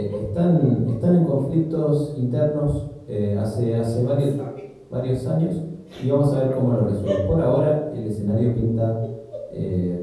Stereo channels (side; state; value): both; identical; correlation 1.00